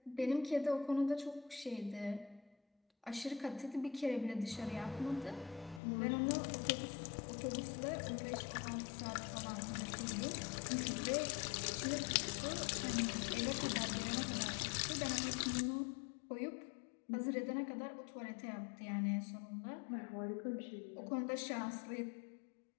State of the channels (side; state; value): right; drops out; at 5.8 s